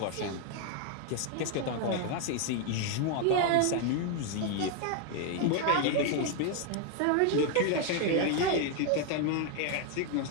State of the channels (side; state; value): both; different; correlation 0.01